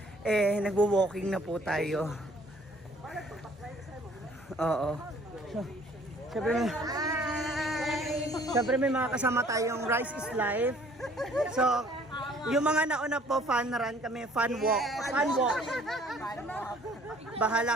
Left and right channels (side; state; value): both; normal; correlation 0.57